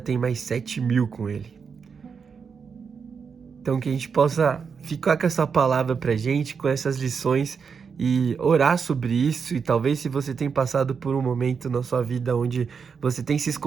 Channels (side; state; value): left; quieter; 6.0 dB